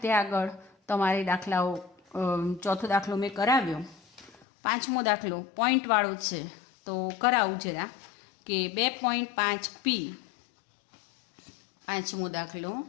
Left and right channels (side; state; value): right; drops out; at 4.5 s